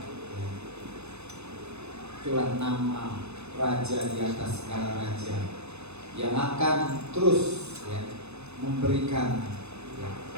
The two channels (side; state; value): left; late; 0.81 ms